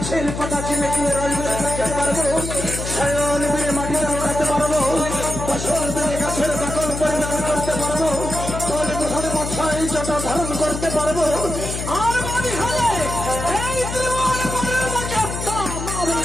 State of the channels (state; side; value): noise; left; hum, 6 dB below the sound